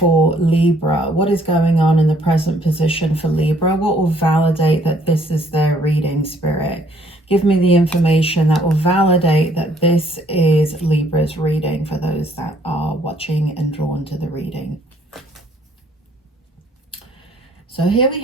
Libra? What is going on in the present position for Libra? What will validate that this is their reading, Spirit? Give me the information that will validate that this is Libra's reading for those that are watching and drawn to the reading. So here we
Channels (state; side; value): normal; both; correlation 0.64